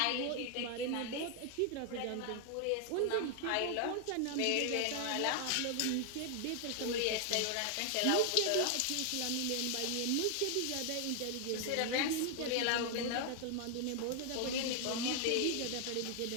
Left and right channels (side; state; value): both; different; correlation 0.00